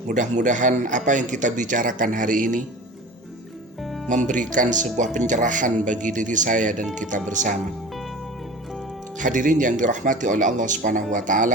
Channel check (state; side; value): normal; both; correlation 0.37